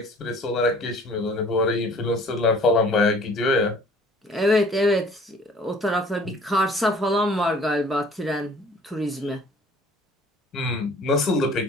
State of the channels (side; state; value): both; normal; correlation 0.52